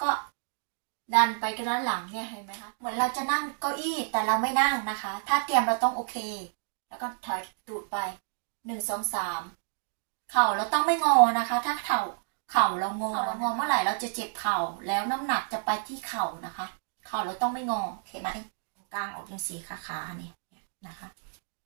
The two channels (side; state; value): left; silent; digital silence